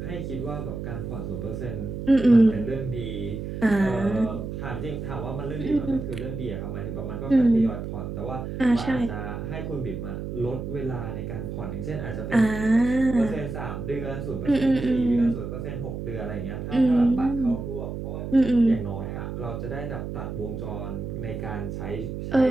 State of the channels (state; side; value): noise; right; hum, 6 dB below the sound